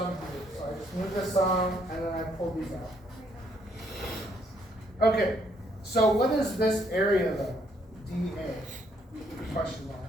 here. So I just moved the sum and then I pulled these out. Okay, so what is this area though? dA? Question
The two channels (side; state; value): both; normal; correlation 0.70